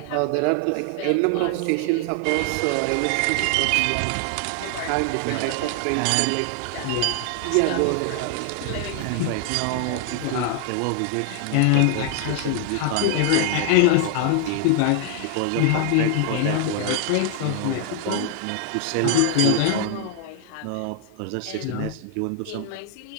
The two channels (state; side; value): different; both; correlation 0.00